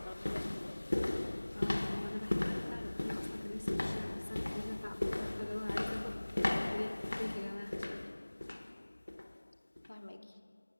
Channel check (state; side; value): inverted; both; correlation -1.00